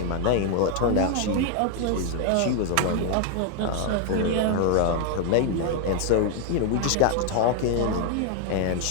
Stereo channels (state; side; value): different; both; correlation 0.00